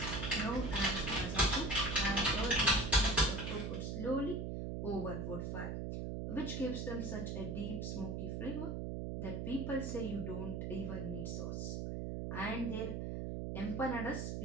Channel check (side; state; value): right; noise; hum, 3 dB below the sound